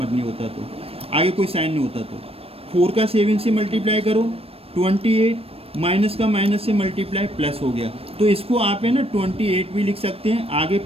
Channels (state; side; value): late; left; 0.28 ms